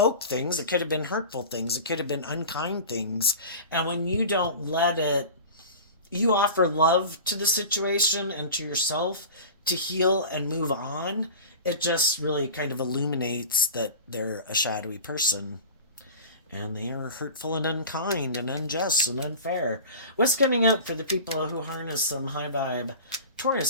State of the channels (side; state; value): both; inverted; correlation -0.35